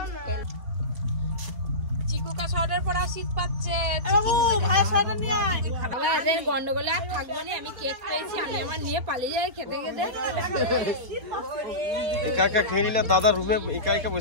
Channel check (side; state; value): left; late; 4.3 ms